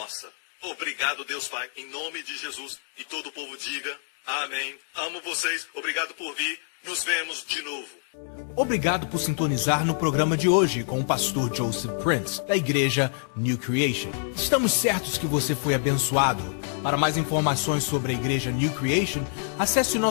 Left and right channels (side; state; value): right; silent; 61 dB below the other